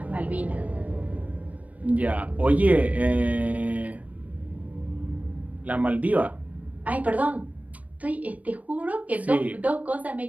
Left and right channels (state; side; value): late; left; 0.070 ms